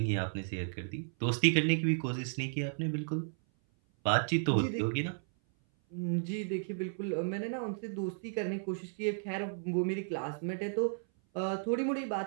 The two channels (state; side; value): silent; left; 55 dB below the other